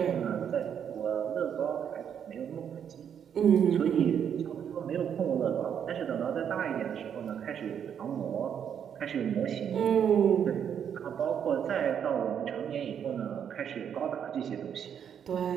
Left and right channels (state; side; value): quieter; left; 8.4 dB